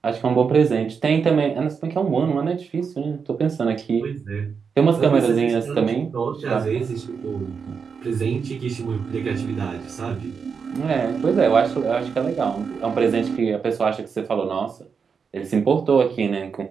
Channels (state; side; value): quieter; left; 5.9 dB